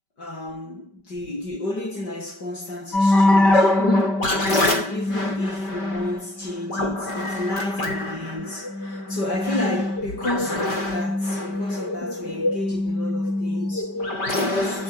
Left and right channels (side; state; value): right; late; 5.1 ms